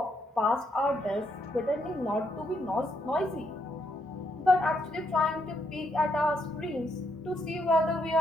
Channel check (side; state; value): both; normal; correlation 0.77